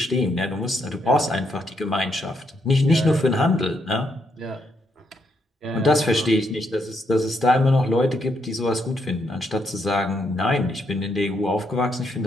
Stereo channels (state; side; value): normal; both; correlation 0.77